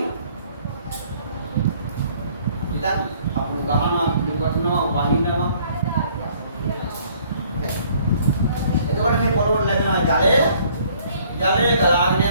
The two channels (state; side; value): inverted; both; correlation -0.60